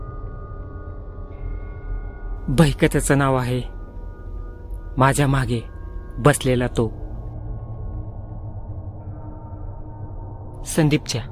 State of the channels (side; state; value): both; identical; correlation 1.00